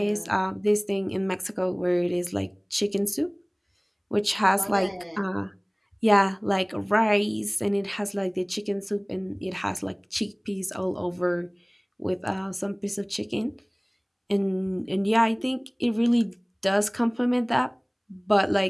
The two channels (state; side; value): identical; both; correlation 1.00